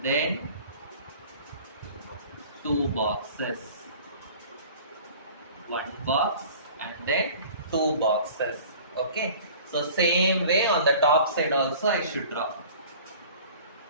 then 2 boxes. One box and then 2 boxes. Okay. So same way on the top side also I should draw.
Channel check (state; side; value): inverted; both; correlation -0.45